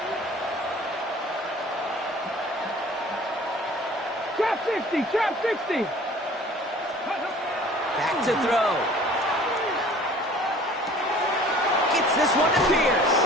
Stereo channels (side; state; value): both; normal; correlation 0.49